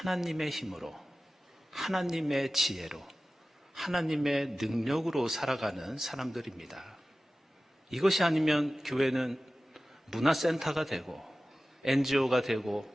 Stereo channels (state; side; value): normal; both; correlation 0.95